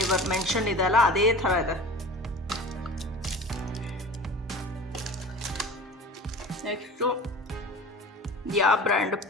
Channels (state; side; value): normal; both; correlation 0.37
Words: mention ಇದೆಲ್ಲ ಅದೇ ಥರ ಇದೆ. ನೆಕ್ಸ್ಟು ಯಾವ ಬ್ರ್ಯಾಂಡ್?